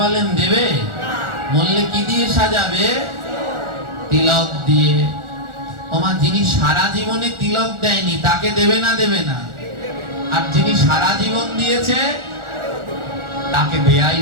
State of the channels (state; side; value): late; left; 1.4 ms